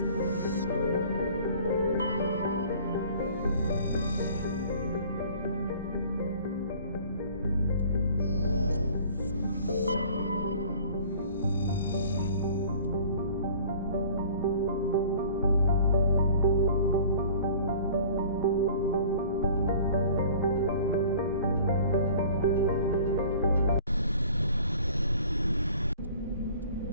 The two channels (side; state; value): both; inverted; correlation -0.49